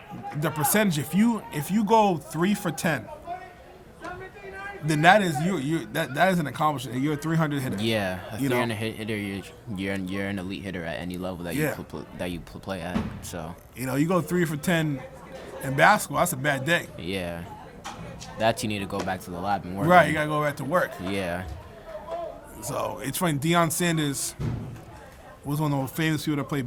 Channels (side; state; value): both; identical; correlation 1.00